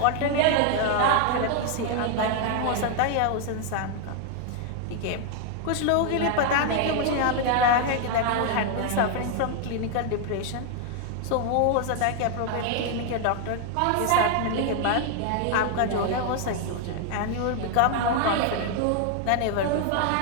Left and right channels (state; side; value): different; both; correlation 0.00